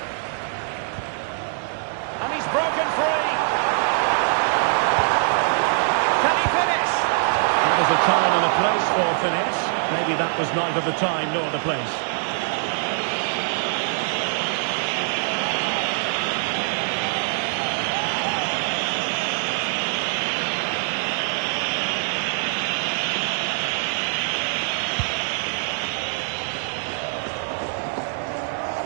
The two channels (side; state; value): left; silent; 63 dB below the other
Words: And he's broken free. Can he finish? Well, there's a time and a place for finish. Maybe that was neither the time nor the place.